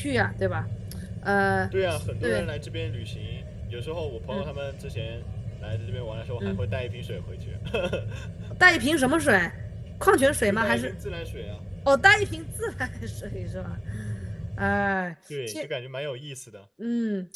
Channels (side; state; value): both; identical; correlation 1.00